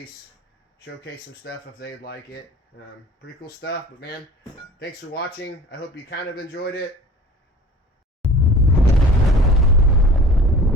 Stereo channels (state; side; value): normal; both; correlation 0.44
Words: showcase some stuff if they'd like it. Pretty cool stuff, but man, thanks for watching. I hope you kind of enjoyed it.